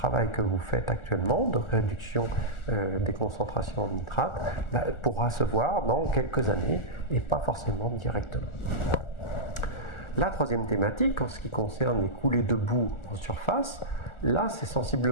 que vous faites actuellement de réduction des concentrations en nitrate pourra se voir dans quelques années, et pas forcément directement. La troisième thématique, en ce qui concerne les coulées de boue en surface, là c'est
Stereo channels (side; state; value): right; late; 1.4 ms